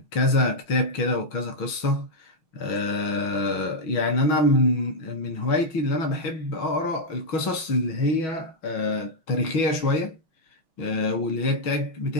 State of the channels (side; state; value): right; late; 6.2 ms